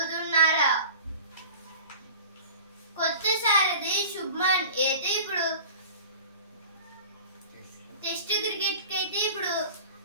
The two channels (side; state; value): both; inverted; correlation -0.39